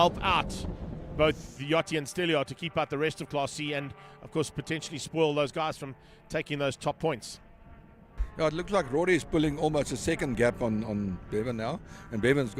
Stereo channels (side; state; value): both; identical; correlation 1.00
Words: out both Yachty and Stelio to keep out the rest of Class C and, of course, potentially spoil those guys from taking those top points. Yeah, it looks like Rory is pulling almost a second gap on Bevan now. And Bevan's